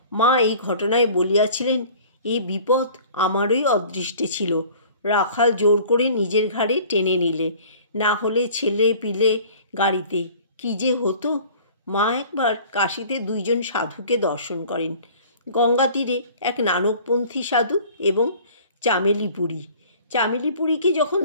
মা এই ঘটনায় বলিয়াছিলেন, এই বিপদ আমারই অদৃষ্টে ছিল। রাখাল জোর করে নিজের ঘাড়ে টেনে নিলে, না হলে ছেলে পিলে গাড়িতে কি যে হতো। মা একবার কাশীতে দুইজন সাধুকে দর্শন করেন, গঙ্গা তীরে এক নানকপন্থী সাধু এবং চামেলিপুরী। চামেলিপুরীকে যখন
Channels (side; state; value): both; inverted; correlation -0.48